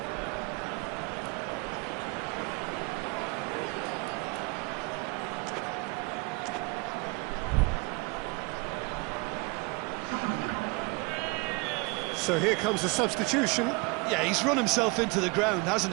So here comes the substitution. Yeah, he's run himself into the ground, hasn't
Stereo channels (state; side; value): quieter; left; 28.1 dB